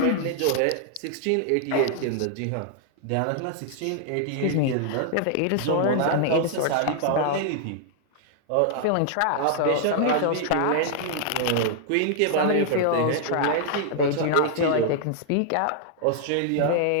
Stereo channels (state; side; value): different; both; correlation 0.00